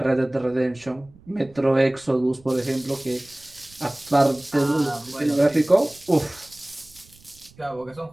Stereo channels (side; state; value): right; noise; rumble, 26 dB below the sound